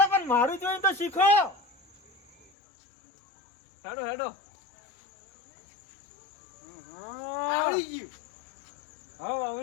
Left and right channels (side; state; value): right; drops out; at 2.5 s